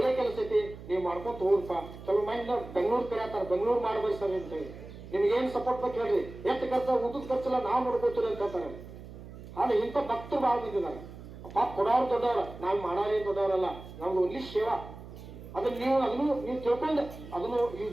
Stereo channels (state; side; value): noise; right; hum, 14 dB below the sound